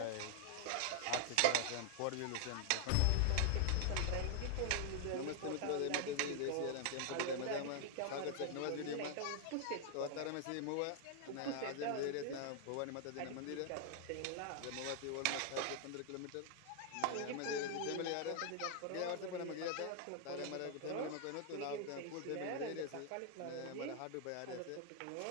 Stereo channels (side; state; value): both; different; correlation 0.00